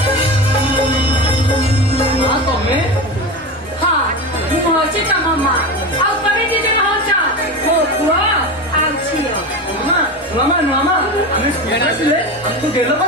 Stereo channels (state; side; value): normal; both; correlation 0.24